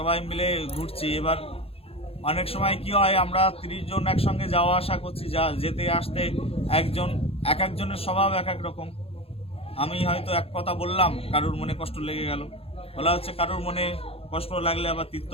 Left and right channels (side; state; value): right; late; 0.28 ms